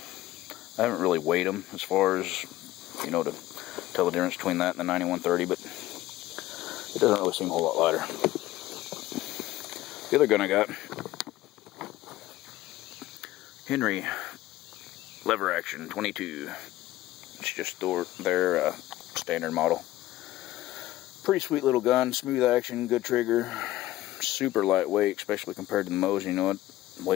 I haven't really weighed them as far as, you know, to tell the difference between that and the 9130, but it doesn't really seem a whole lot lighter. The other gun I got, Henry lever action 22. It's just their standard model. Pretty sweet little gun, smooth action, good trigger, super lightweight, especially compared to the Mosin. You know, it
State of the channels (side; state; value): right; quieter; 15.8 dB